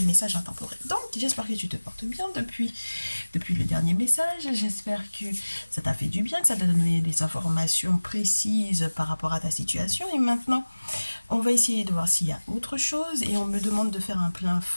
messages intemporels. Donc, j'espère que tu te portes bien depuis le dernier message. J'espère que ça t'a fait du bien, que ça t'a donné des informations précises par rapport à ta situation. Et maintenant, on va essayer de voir s'il y a autre chose. Et on me demande de faire un plein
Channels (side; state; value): both; inverted; correlation -1.00